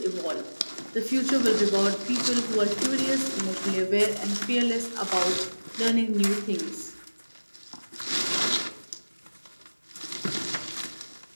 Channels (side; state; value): both; inverted; correlation -1.00